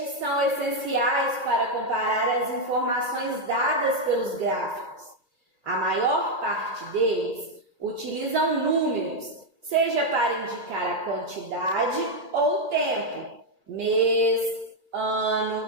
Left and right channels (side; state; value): left; late; 2.5 ms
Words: são essenciais para comparar as informações dadas pelos gráficos. A maior parte deles utilizam números, seja para indicar a quantidade ou tempo, mês, ano,